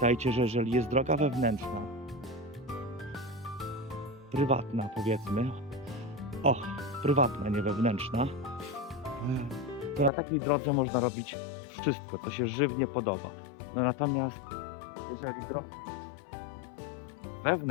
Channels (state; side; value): drops out; right; at 10.1 s